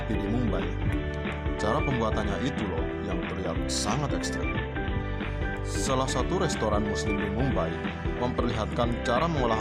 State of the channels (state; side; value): identical; both; correlation 1.00